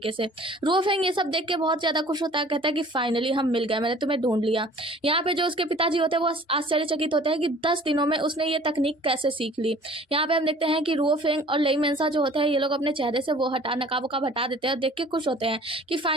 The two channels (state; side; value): normal; both; correlation 0.49